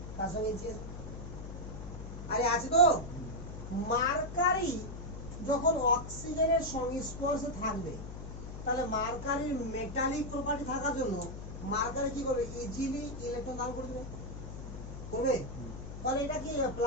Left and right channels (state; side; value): noise; left; hum, 9 dB below the sound